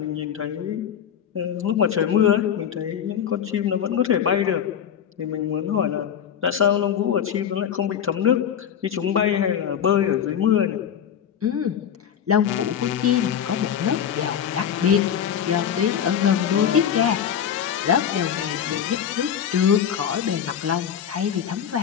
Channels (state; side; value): quieter; right; 8.8 dB